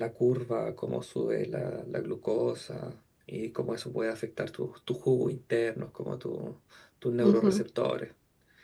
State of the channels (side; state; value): both; identical; correlation 1.00